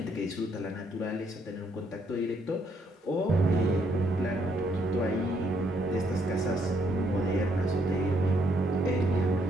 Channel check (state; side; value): normal; both; correlation 0.72